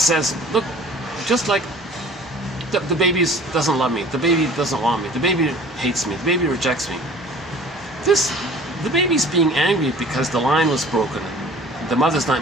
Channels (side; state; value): both; normal; correlation 0.47